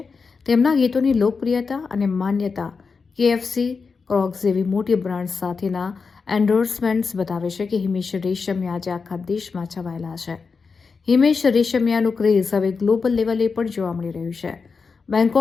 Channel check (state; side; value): quieter; right; 5.0 dB